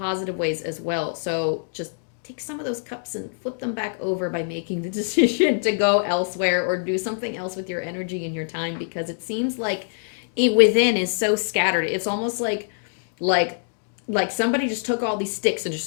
ways as well. So just take some of those cups and flip them back over by making the decision to go elsewhere or do something else with your energy and your time, because it seems like it within is so scattered. It's almost like somebody just took all these sticks and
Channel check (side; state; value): right; silent; digital silence